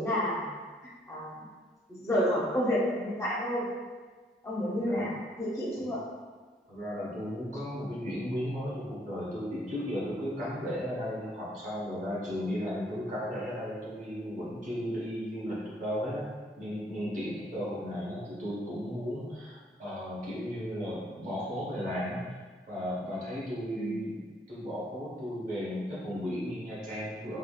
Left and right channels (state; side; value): normal; both; correlation 0.66